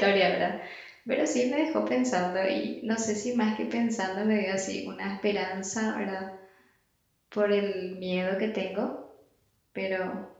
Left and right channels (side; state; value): both; identical; correlation 1.00